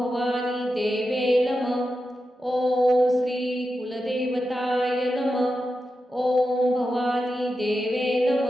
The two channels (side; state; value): both; normal; correlation 0.90